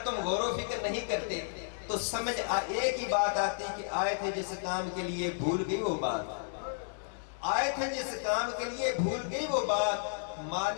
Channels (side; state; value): right; silent; 56 dB below the other